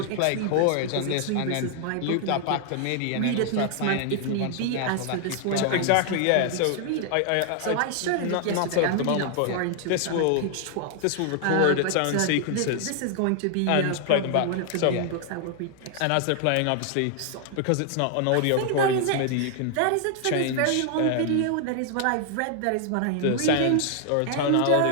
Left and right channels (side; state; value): both; different; correlation 0.00